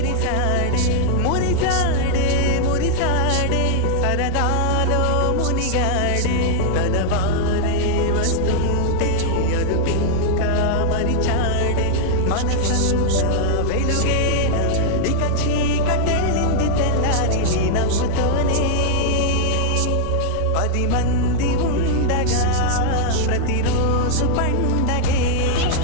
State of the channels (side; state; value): both; different; correlation -0.01